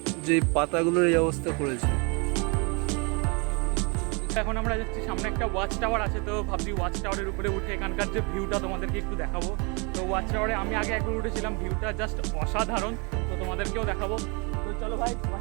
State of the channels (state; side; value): quieter; left; 31.7 dB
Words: যে পাতাগুলোর এই অবস্থা করেছে। এখন আমরা যাচ্ছি, সামনে একটা ওয়াচ টাওয়ার আছে, তো ভাবছি ওয়াচ টাওয়ারের উপরে উঠে এখানকার যে ভিউটা তোমাদেরকে একটু দেখাবো। তো ওয়াচ টাওয়ারে আমি আগে একবার উঠেছিলাম, ভিউটা জাস্ট অসাধারণ, তো তোমাদেরকেও দেখাবো। তো চলো ভাই,